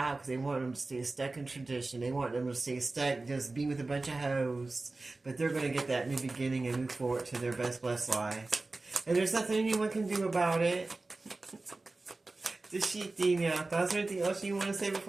because they wanted them to stay stuck in tradition. They want them to stay stuck, just be with a bunch of hoes. But they're going to get that new beginning and move forward to their best blessed life. And there's nothing anyone can do about it. Is there anything else you want to say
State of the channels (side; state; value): left; quieter; 3.3 dB